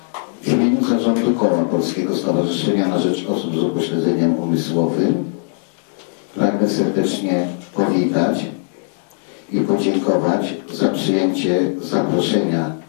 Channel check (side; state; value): right; silent; 65 dB below the other